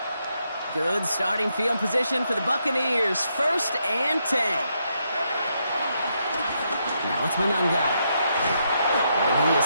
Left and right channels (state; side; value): inverted; both; correlation -0.79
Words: Good starting field position for the Buccaneers. 1st and 10. Now it's Monangai. And he is